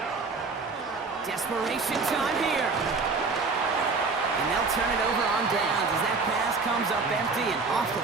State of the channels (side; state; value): left; quieter; 4.2 dB